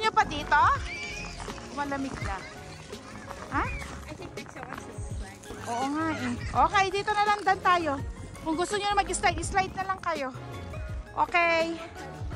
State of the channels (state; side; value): identical; both; correlation 1.00